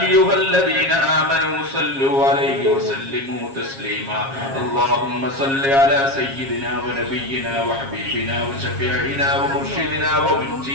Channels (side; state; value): left; late; 7.4 ms